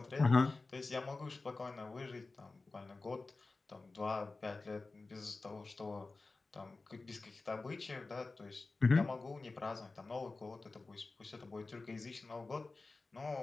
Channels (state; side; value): quieter; right; 3.6 dB